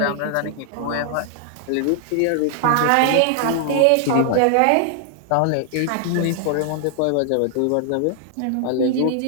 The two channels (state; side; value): different; both; correlation 0.00